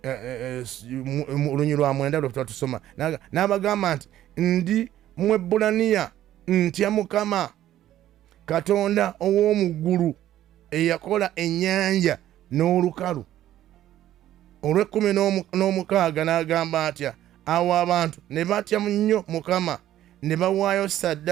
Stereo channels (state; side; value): quieter; left; 12.7 dB